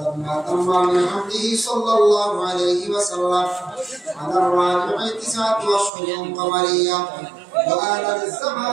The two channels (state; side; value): drops out; left; at 5.9 s